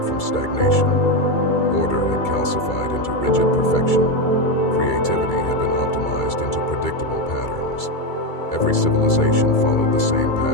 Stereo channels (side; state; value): right; late; 2.3 ms